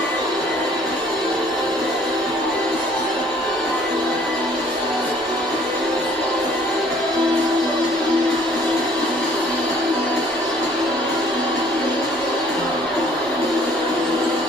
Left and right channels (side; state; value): both; normal; correlation 0.57